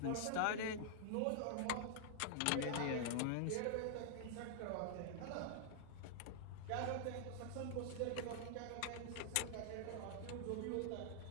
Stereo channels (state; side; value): different; both; correlation -0.01